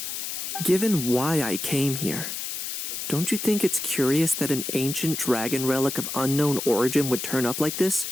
Given why I came here, don't you think it's curious that an ancient dragon relic of unknown origin would turn up like this,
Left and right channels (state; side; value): noise; left; hiss, 5 dB below the sound